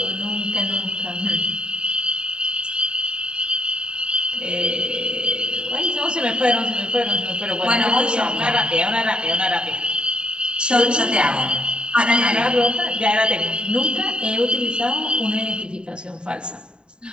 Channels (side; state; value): left; late; 0.050 ms